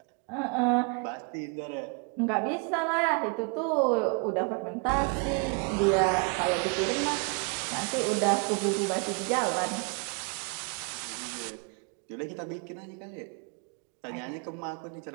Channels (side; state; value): left; quieter; 35.5 dB